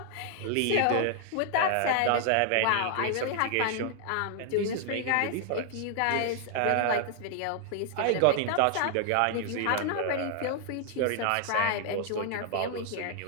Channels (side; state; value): both; different; correlation 0.00